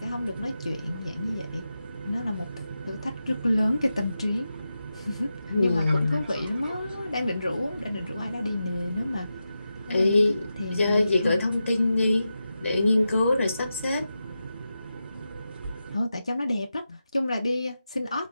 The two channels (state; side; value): inverted; both; correlation -0.90